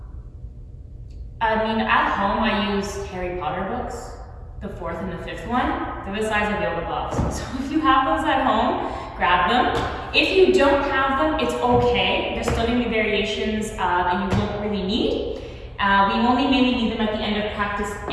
home I use Harry Potter books, the 4th and the 5th one. They're the size of yoga blocks. So if you have those at home, grab them. If you don't have them, it's okay. There's still going to be variations that you won't really need. We only mainly need them at the end of practice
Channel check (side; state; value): both; identical; correlation 1.00